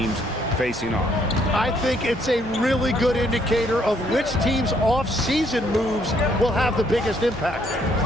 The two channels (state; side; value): normal; both; correlation 0.69